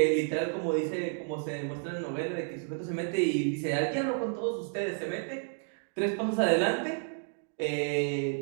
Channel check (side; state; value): left; silent; 57 dB below the other